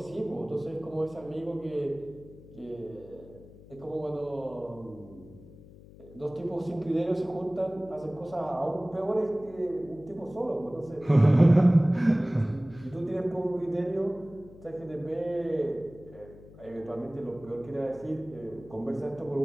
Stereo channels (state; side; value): noise; left; hum, 20 dB below the sound